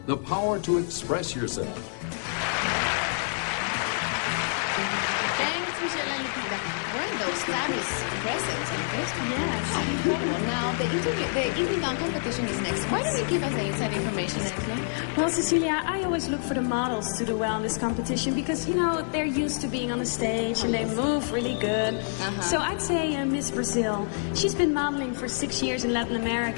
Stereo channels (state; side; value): silent; right; digital silence